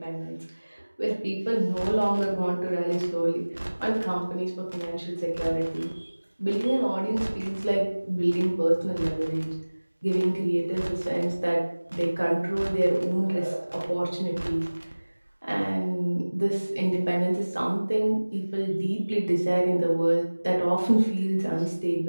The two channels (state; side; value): inverted; both; correlation -1.00